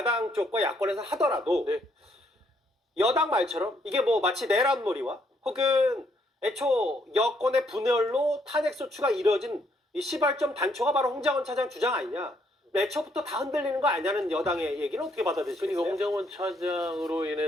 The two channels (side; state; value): both; normal; correlation 0.71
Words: 쪽과 야권에서 하더라도 네. 여당 말처럼 이게 뭐 마치 내란놀이와 혹은 애초 여권의 분열로 탄핵소추가 이뤄진 이 시발점 단초가 바로 홍장원 차장 주장 아니냐. 애초부터 다 흔들리는 거 아니냐는 여당의 얘기는 어떻게 받아들이시겠어요? 그러니까 홍장원 차장으로